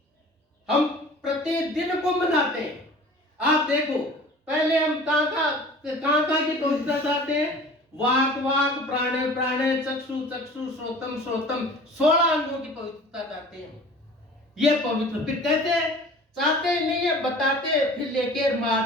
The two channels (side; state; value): both; normal; correlation 0.44